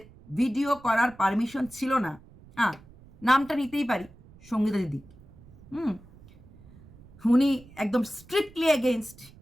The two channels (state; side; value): noise; right; rumble, 23 dB below the sound